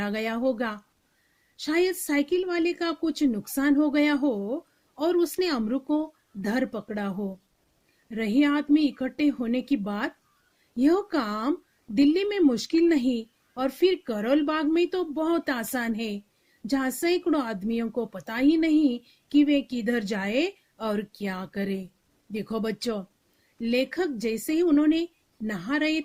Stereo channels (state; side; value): identical; both; correlation 1.00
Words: गया होगा। शायद साइकिल वाले का कुछ नुकसान हो गया हो और उसने अमरू को धर पकड़ा हो। रही आदमी इकट्ठे होने की बात, यह काम दिल्ली में मुश्किल नहीं और फिर करोल बाग में तो बहुत आसान है, जहाँ सैकड़ों आदमियों को पता ही नहीं कि वे किधर जाए और क्या करे। देखो बच्चों, लेखक जैसे ही उन्होंने नहा रहे